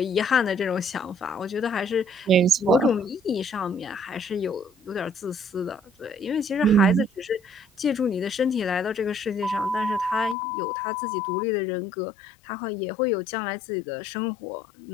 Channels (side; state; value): right; drops out; at 10.4 s